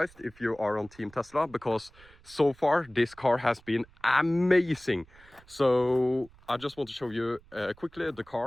if you are on Team Tesla, because so far this car has been amazing. So I just want to show you quickly the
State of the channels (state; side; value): noise; right; rumble, 26 dB below the sound